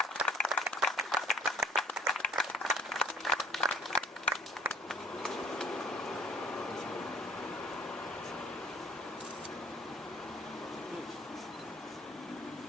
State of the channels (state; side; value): normal; both; correlation 0.52